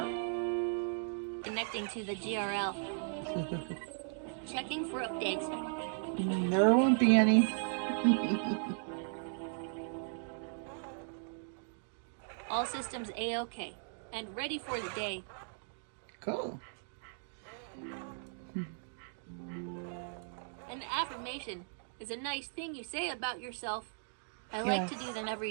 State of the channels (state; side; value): silent; left; digital silence